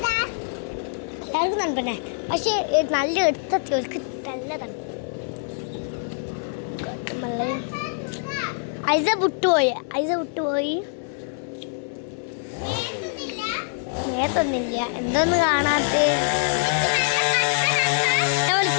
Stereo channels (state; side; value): silent; right; 62 dB below the other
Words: എല്ലാവർക്കും തണുപ്പന്നെ, പക്ഷെ നല്ല എടുത്തെത്തിയവർക്ക് നല്ല തണുപ്പ്. ഐസ വിട്ടുപോയി. നേരത്തൊന്നില്ല. എന്തോന്ന് കാണാത്ത